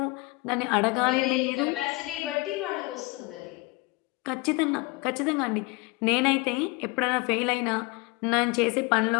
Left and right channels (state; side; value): quieter; right; 24.6 dB